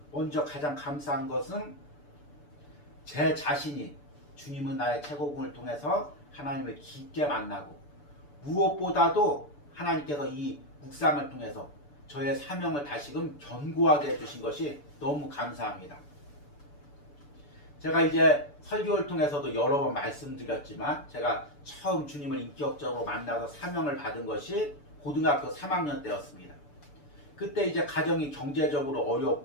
먼저 가장 감사한 것은 제 자신이 주님은 나의 최고봉을 통해서 하나님을 깊게 만나고 무엇보다도 하나님께서 이 묵상을 통해서 저의 사명을 다시금 견고하게 해주신 것이 너무 감사합니다. 제가 이제 설교를 통해서도 여러 번 말씀드렸지만 제가 처음 주님을 인격적으로 만나서 사명을 받은 것이 고등학교 3학년 때였습니다. 그때 이제 가정이 경제적으로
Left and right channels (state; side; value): late; right; 6.9 ms